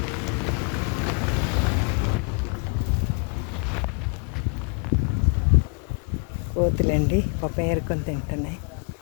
కోతులండి పాపం ఏరుకొని తింటున్నాయి.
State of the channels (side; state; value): right; quieter; 37.7 dB